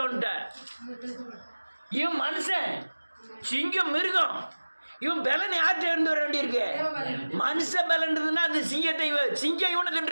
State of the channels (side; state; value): both; inverted; correlation -1.00